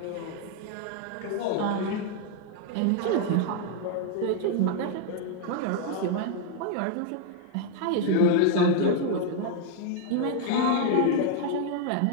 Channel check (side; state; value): both; different; correlation 0.00